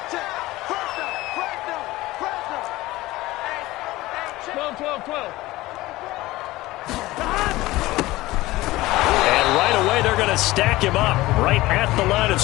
12. And right away, they're going to stack him up right at the line of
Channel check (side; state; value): right; quieter; 18.5 dB